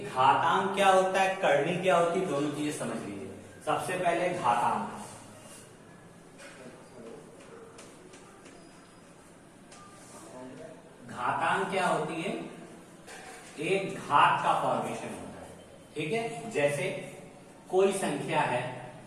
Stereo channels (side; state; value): both; identical; correlation 1.00